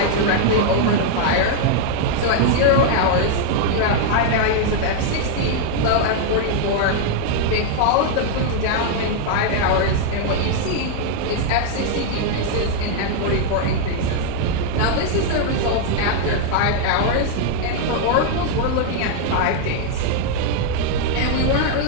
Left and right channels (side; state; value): both; different; correlation 0.00